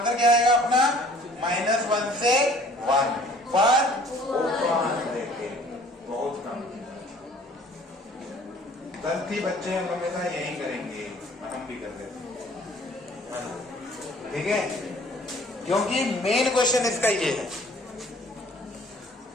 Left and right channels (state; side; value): normal; both; correlation 0.54